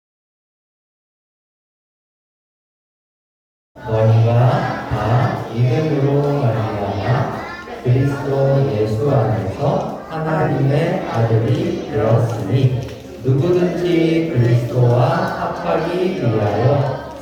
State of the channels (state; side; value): identical; both; correlation 1.00